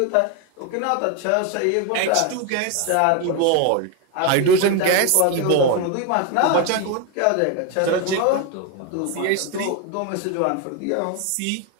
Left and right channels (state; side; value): different; both; correlation 0.02